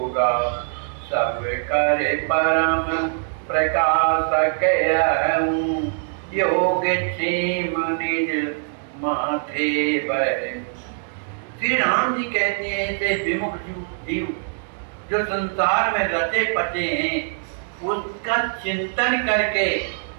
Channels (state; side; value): silent; left; digital silence